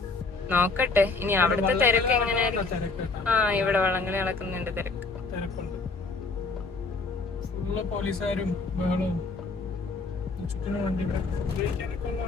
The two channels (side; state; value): right; quieter; 4.0 dB